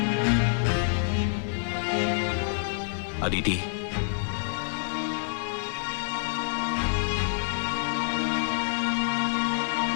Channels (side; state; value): right; silent; digital silence